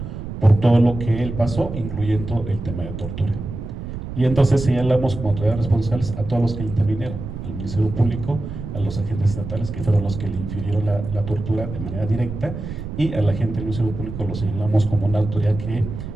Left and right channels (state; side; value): noise; right; rumble, 8 dB below the sound